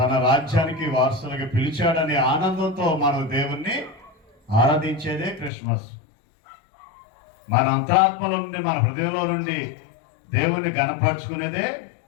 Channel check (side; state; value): right; drops out; at 5.5 s